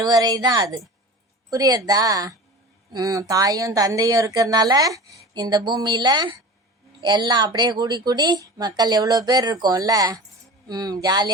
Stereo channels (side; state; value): both; normal; correlation 0.35